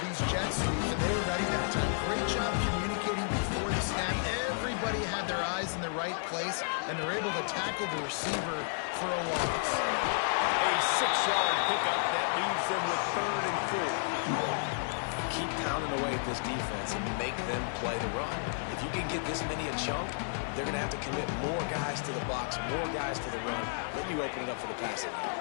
jet sweeps, and they were ready that time. Great job communicating before the snap. Everybody had their eyes in the right place, and they're able to tackle the receiver for a loss. A 6-yard pickup that leaves them with 3rd and 4. Keep pounding away at this defense and make them play the run. If you can get this many a chunk, they're going to have to commit more guys to the box, more guys to the run. Then you open it up for the passing game.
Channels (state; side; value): silent; right; 56 dB below the other